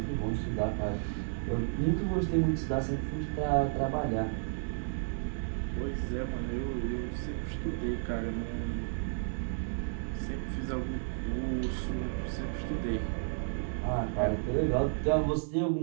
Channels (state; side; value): silent; left; digital silence